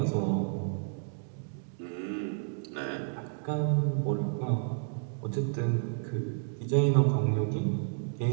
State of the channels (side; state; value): left; silent; digital silence